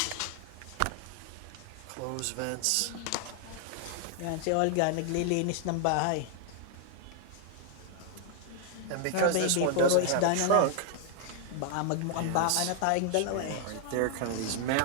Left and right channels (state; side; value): different; both; correlation 0.00